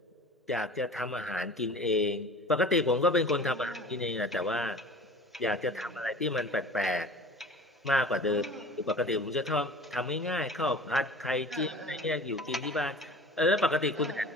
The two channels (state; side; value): normal; both; correlation 0.41